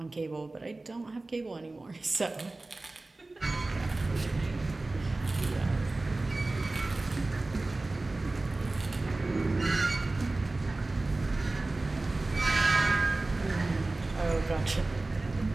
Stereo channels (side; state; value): left; quieter; 3.1 dB